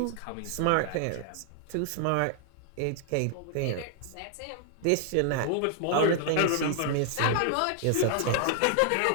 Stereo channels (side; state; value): both; different; correlation 0.00